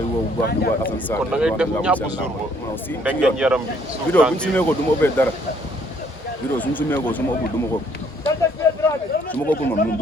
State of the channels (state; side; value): normal; both; correlation 0.64